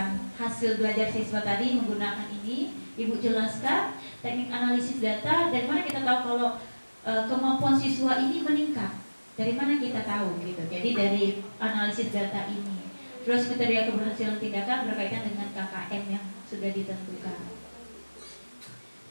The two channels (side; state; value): both; inverted; correlation -1.00